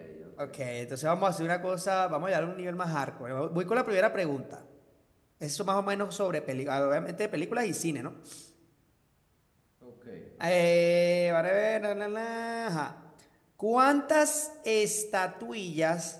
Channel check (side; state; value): both; identical; correlation 1.00